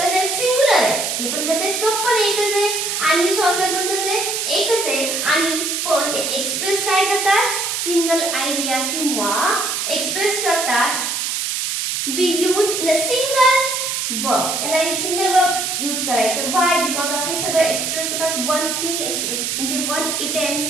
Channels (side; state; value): right; noise; hiss, 1 dB below the sound